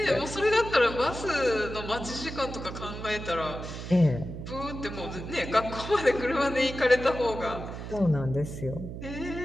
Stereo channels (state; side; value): noise; right; hum, 9 dB below the sound